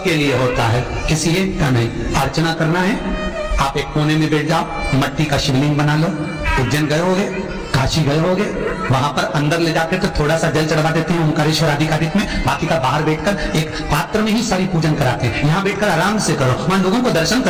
लिए होता है, किसी एक का नहीं। अर्चना करना है, आप एक कोने में बैठ जाओ, मट्टी का शिवलिंग बना लो। उज्जैन गए होगे, काशी गए होगे, वहां पर अंदर ले जाकर तो थोड़ा सा जल चढ़वा देते हैं ओंकारेश्वर आधिकारिक में, बाकी का बाहर बैठकर एक पात्र में ही सारी पूजन कराते हैं। यहाँ बैठकर आराम से करो, वहां लोगों को दर्शन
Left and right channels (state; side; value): identical; both; correlation 1.00